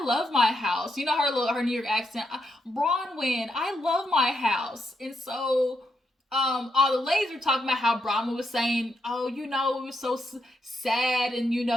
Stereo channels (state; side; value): normal; both; correlation 0.81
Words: love my house. Her New York accent. Bronwyn, I love my house. And so all the ladies were talking about how Brahma was saying, oh, you know, it was so sad and, you